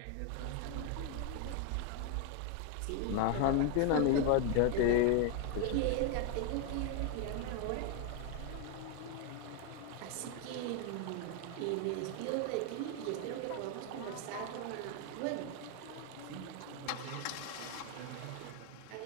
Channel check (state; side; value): different; both; correlation 0.01